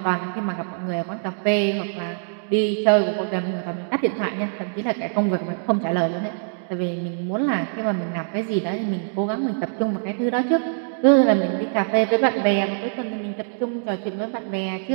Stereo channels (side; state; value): left; silent; digital silence